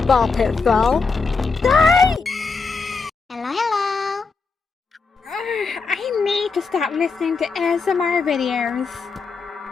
ball pit fall. Die! Hello. I need to stop listening to ASMR videos.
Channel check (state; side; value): quieter; right; 4.6 dB